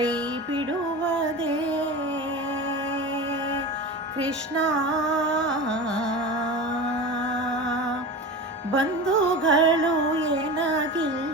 ಬಿಡುವುದೇ ಕೃಷ್ಣ. ಬಂಧುಗಳು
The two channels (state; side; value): normal; both; correlation 0.29